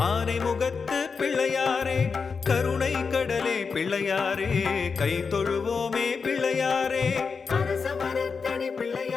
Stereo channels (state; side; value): quieter; right; 5.2 dB